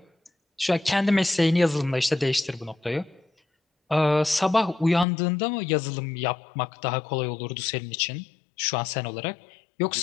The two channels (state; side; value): drops out; right; at 5.1 s